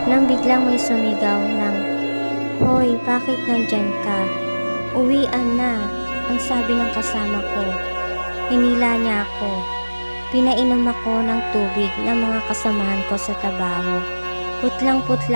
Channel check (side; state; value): both; inverted; correlation -1.00